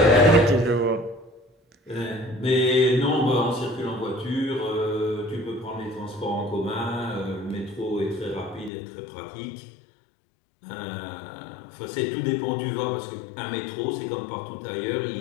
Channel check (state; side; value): drops out; right; at 8.7 s